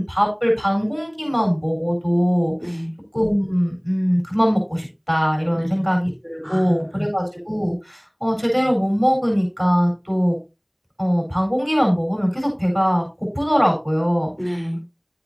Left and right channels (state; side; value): identical; both; correlation 1.00